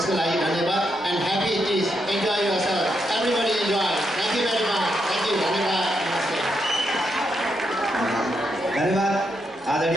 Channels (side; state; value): both; normal; correlation 0.81